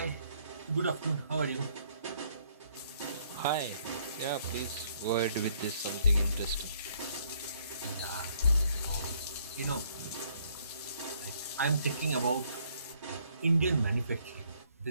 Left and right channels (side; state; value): both; inverted; correlation -0.66